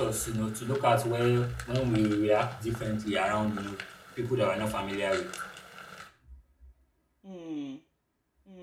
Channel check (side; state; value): both; identical; correlation 1.00